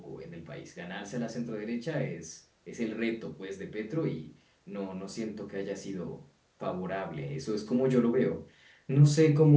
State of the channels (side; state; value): both; identical; correlation 1.00